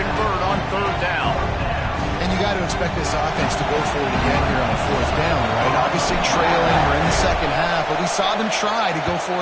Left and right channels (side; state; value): both; identical; correlation 1.00